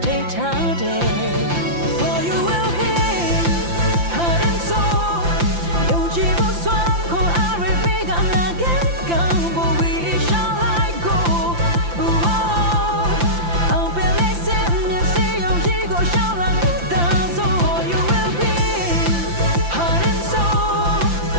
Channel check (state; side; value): late; left; 5.8 ms